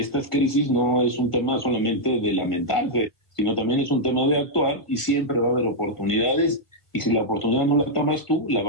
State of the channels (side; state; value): right; late; 1.6 ms